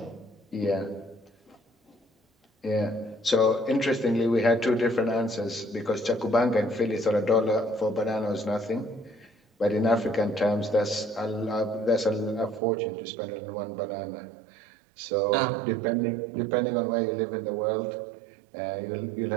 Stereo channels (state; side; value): drops out; left; at 12.6 s